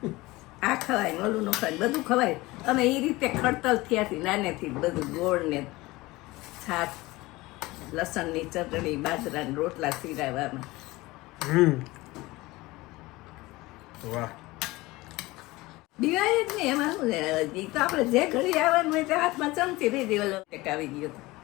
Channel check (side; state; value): right; quieter; 20.6 dB